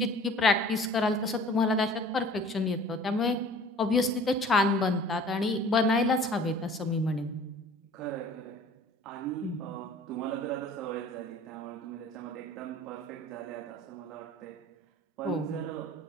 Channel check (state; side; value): normal; both; correlation 0.48